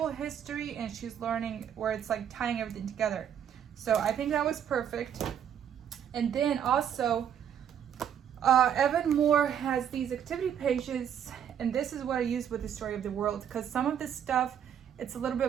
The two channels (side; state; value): left; quieter; 9.0 dB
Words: history, and she's learning where it's like tying everything together. So I think that was perfect. And then also Evan Moore has these activity pages, and this is what I use with the story of the world, because some of this stuff, it's a little